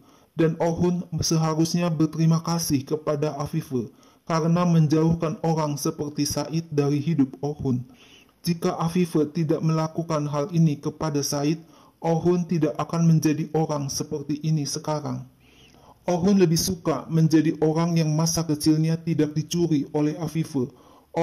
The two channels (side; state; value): both; identical; correlation 1.00